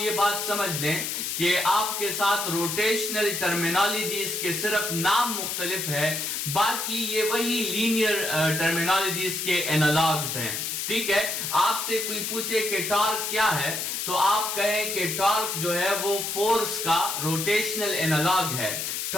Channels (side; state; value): left; noise; hiss, 3 dB below the sound